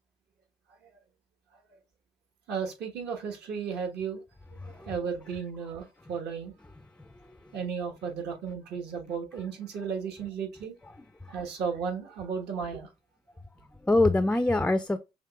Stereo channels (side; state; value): both; normal; correlation 0.76